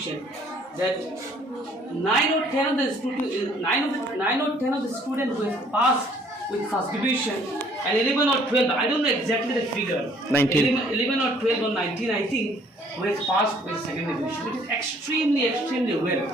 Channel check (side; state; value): both; normal; correlation 0.60